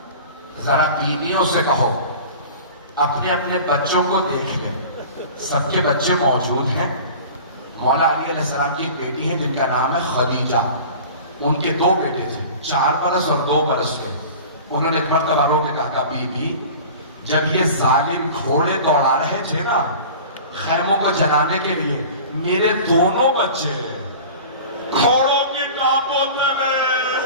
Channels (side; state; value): both; inverted; correlation -0.39